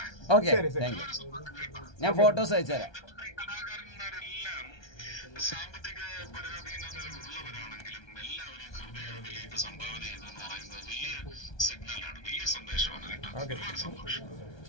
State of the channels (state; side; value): late; right; 1.3 ms